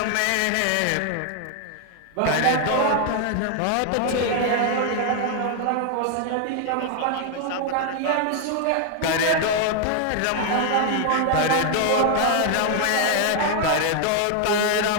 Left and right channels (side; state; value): both; different; correlation 0.00